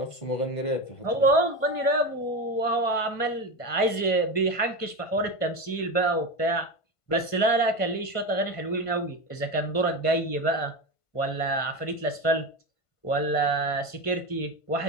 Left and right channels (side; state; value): right; late; 1.5 ms